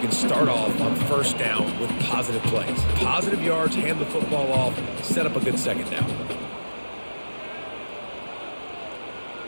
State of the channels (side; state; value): both; inverted; correlation -1.00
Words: start off on first down with positive plays. Positive yards, hand the football off, set up a good second down.